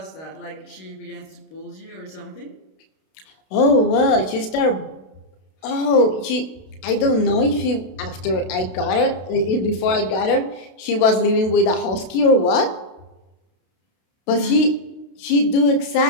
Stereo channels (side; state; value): right; late; 32 ms